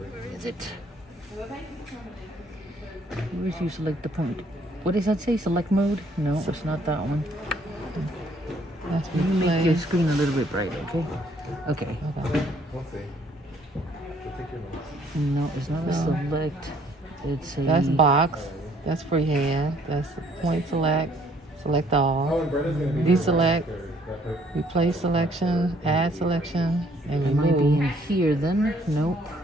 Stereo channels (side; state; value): both; normal; correlation 0.63